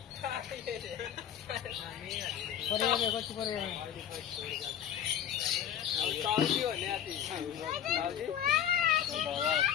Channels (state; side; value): quieter; right; 9.7 dB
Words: পরে যাবে, কত পরে যাবে।